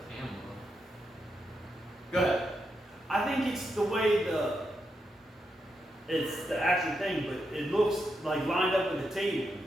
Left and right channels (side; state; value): both; normal; correlation 0.84